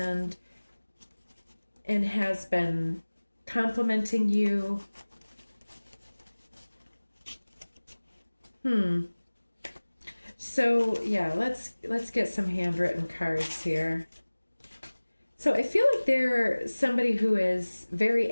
has been complimenting you. So yeah, let's get some handwritten cards here. So I feel like they're somebody who is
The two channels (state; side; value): inverted; both; correlation -1.00